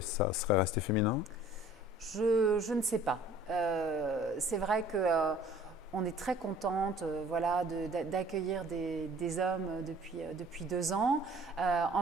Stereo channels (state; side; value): normal; both; correlation 0.52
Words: serait resté féminin? Je ne sais pas. C'est vrai que on est très contente voilà, d'accueillir des hommes depuis 2 ans.